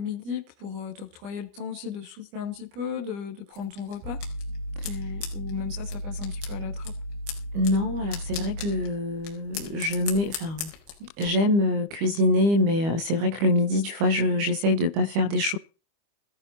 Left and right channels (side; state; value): left; late; 25 ms